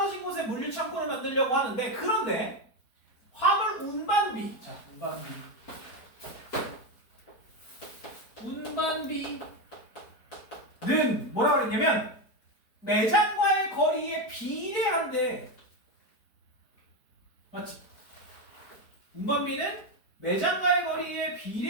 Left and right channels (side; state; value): right; late; 4.5 ms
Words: 곳에 물류 창고를 만들려고 하는데, 그런데 화물 운반비, 자, 운반비는 뭐라 그랬냐면 매장과의 거리에 비례한데, 맞지? 운반비는 매장과의 거리에